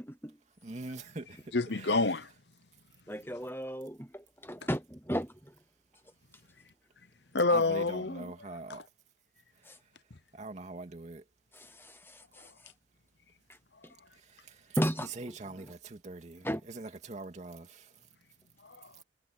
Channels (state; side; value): normal; both; correlation 0.14